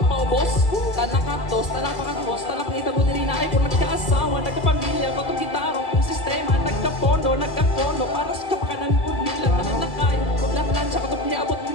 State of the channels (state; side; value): late; right; 1.7 ms